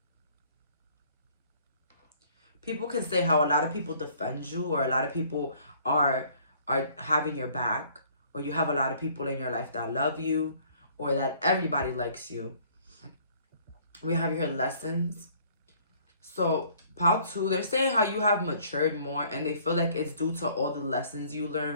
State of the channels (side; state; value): both; inverted; correlation -0.58